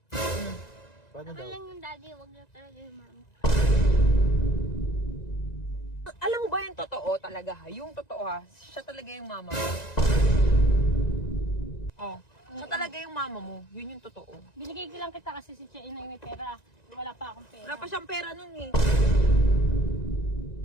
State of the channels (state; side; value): late; right; 1.9 ms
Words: Paano Ako daw? lang yung daddy, wag na talaga yung mami. Alam mo ba yung totoo talaga ha? Yung totoo ha? Siya talaga yung mama mo. Oh. Siya talaga yung mama mo. Yun yung totoo. Binigay ko lang kita kasi si Chia Inay may pera. Wala pa akong pera. Wala pa siyang pera nun eh.